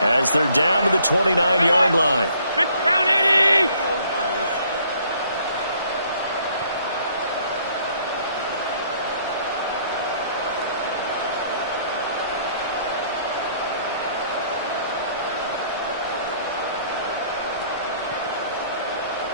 as they're down to the 29-yard line. Down 80!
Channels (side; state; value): both; inverted; correlation -0.62